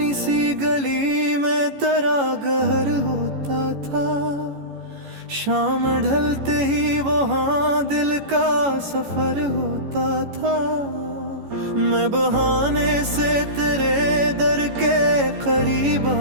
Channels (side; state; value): left; late; 14 ms